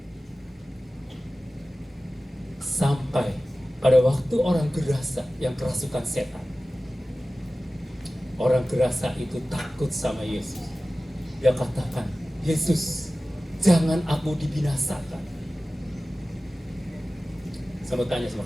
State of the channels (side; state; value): both; normal; correlation 0.96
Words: Sampai pada waktu orang gerasa yang kerasukan setan, orang gerasa itu takut sama Yesus. Dia katakan, Yesus, jangan aku dibinasakan. Saya mau tanya